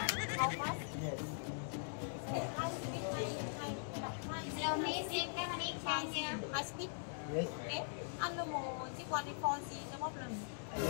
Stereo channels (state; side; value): silent; right; digital silence